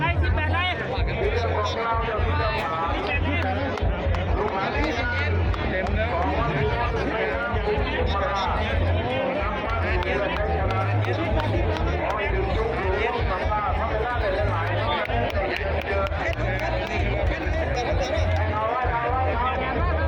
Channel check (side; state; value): both; identical; correlation 1.00